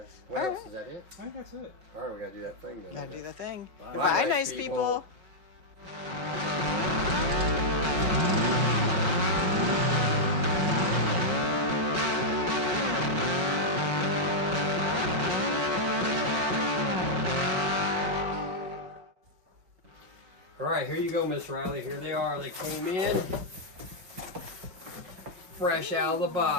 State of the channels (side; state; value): left; late; 5.7 ms